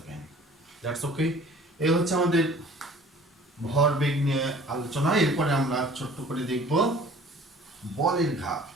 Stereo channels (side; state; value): both; normal; correlation 0.49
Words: That's okay. এই হচ্ছে আমাদের ভরবেগ নিয়ে আলোচনা। এরপরে আমরা ছোট্ট করে দেখব বলের ঘাত।